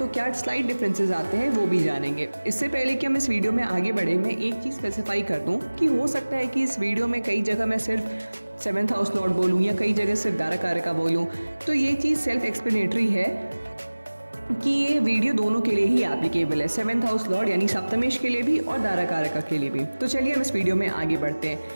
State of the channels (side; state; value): both; inverted; correlation -1.00